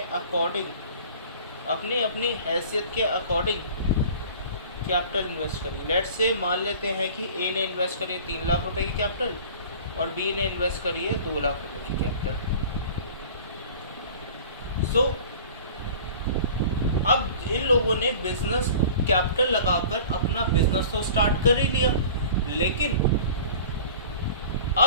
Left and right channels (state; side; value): inverted; both; correlation -0.43